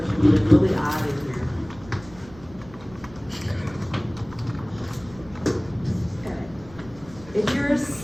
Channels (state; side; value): noise; right; rumble, 21 dB below the sound